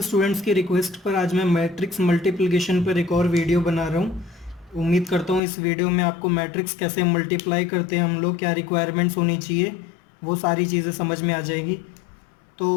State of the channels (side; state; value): right; drops out; at 5.4 s